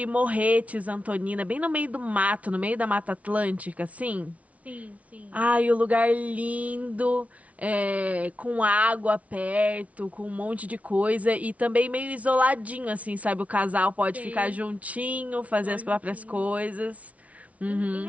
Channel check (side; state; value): left; late; 0.067 ms